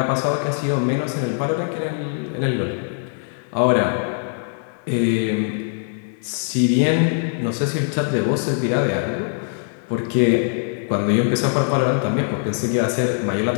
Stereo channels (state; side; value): silent; right; 63 dB below the other